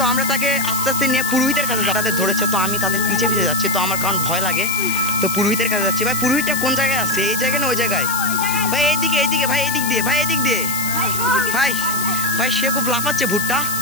আমরা তাকে আস্তে আস্তে নিয়ে পুরোহিতের কাছে, তাদের ধরেছে। তো আমি তাদের পিছে পিছে যাচ্ছি, তো আমার কারণ ভয় লাগে। তো পুরোহিতের কাছে যাচ্ছি। ভাই পুরোহিতটা কোন জায়গায় আছে? এই জায়গায় না ওই জায়গায়? ভাই এইদিকে, এইদিকে ভাই, এদিক দিয়ে ভাই, এদিক দিয়ে ভাই। ভাই সে খুব লাফাচ্ছে ভুট্টা।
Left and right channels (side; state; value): left; noise; hiss, 5 dB below the sound